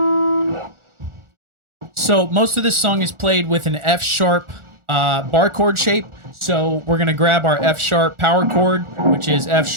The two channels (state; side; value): late; left; 1.4 ms